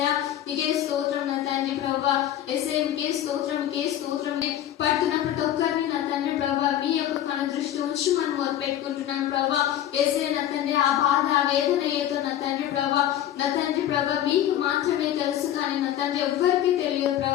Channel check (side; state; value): right; quieter; 11.7 dB